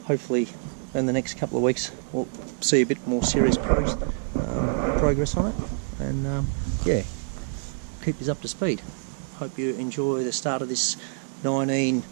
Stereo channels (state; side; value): silent; left; digital silence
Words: hopefully in the next couple of weeks we'll see a bit more serious progress on it, and yeah, keep us up to speed. Hope you enjoy the start of this 19